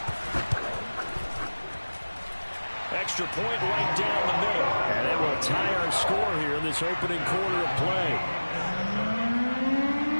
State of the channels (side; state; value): both; inverted; correlation -1.00